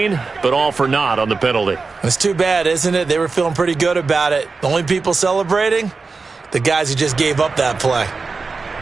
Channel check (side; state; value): left; quieter; 4.3 dB